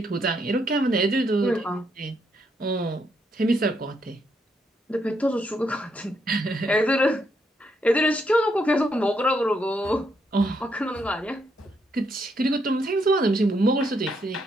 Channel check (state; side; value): normal; both; correlation 0.76